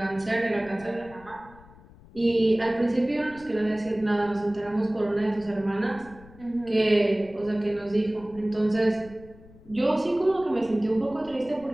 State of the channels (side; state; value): left; noise; rumble, 22 dB below the sound